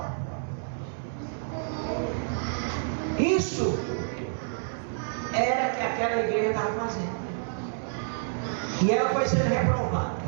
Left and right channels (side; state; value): left; silent; 59 dB below the other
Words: Isso era que aquela igreja estava fazendo. E ela foi sendo